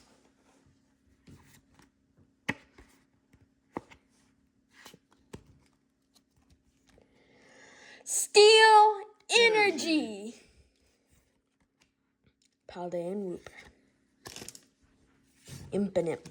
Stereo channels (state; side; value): identical; both; correlation 1.00